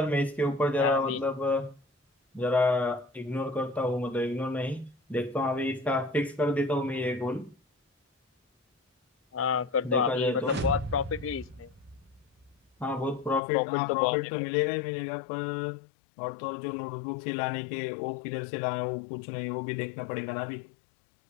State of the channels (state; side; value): drops out; right; at 13.4 s